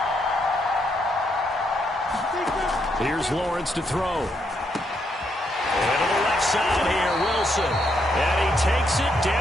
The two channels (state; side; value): normal; both; correlation 0.77